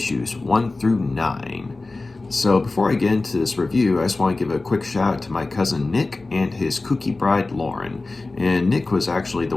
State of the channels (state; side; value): quieter; right; 3.3 dB